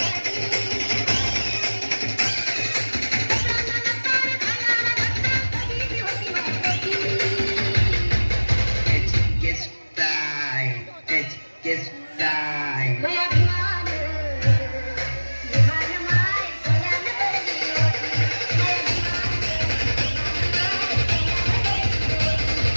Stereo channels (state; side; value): inverted; both; correlation -1.00